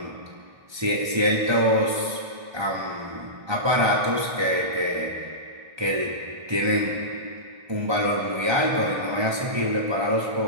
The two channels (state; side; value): late; left; 1.2 ms